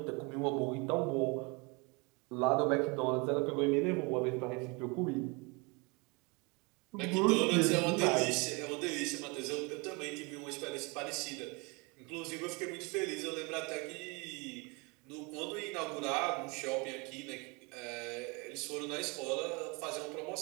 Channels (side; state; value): left; quieter; 29.0 dB